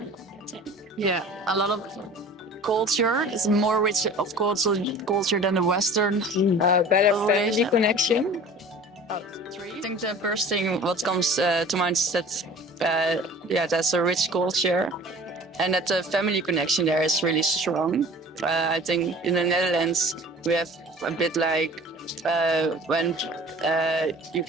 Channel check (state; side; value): normal; both; correlation 0.44